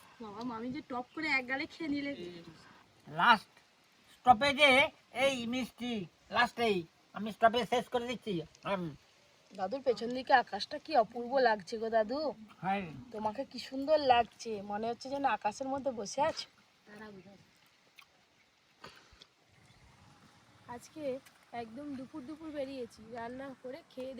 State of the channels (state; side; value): identical; both; correlation 1.00